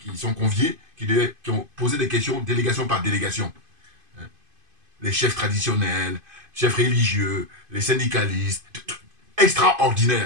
sont conviés, qui ont posé des questions, délégation par délégation. Hein. Les chefs traditionnels, chefs religieux, les syndicalistes,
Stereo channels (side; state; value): left; late; 2.5 ms